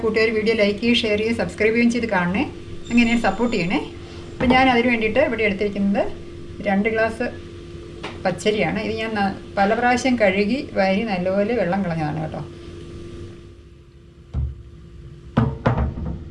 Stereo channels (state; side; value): identical; both; correlation 1.00